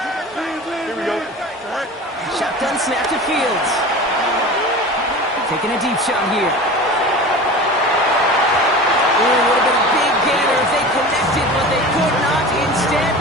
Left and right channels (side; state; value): both; normal; correlation 0.34